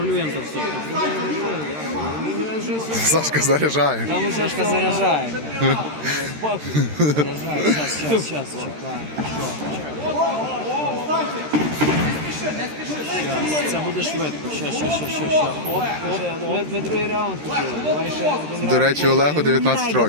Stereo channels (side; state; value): left; late; 13 ms